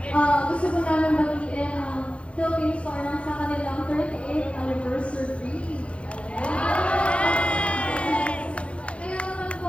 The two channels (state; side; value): late; right; 0.061 ms